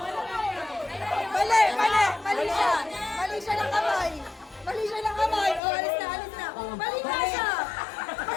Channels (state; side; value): drops out; right; at 5.6 s